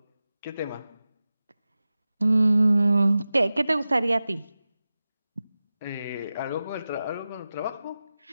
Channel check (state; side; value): inverted; both; correlation -0.95